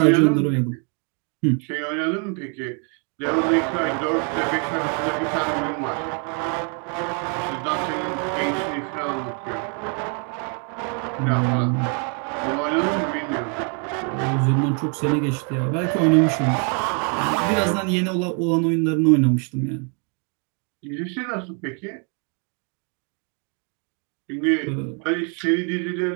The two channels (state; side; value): quieter; left; 38.5 dB